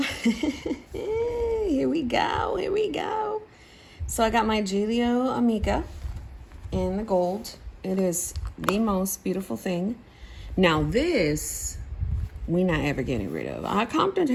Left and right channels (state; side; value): identical; both; correlation 1.00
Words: Here we go. Here we go. So I got my Gillio Amica in the gold. It is the most beautiful thing. Now this, we not ever getting rid of. I